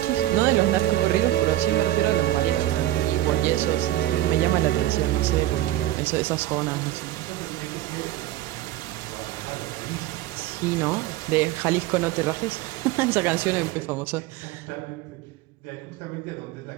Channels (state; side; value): quieter; left; 14.7 dB